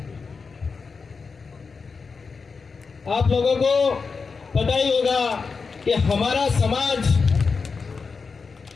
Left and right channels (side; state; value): right; quieter; 4.9 dB